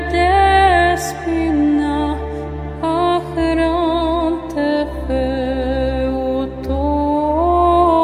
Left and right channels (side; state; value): both; identical; correlation 1.00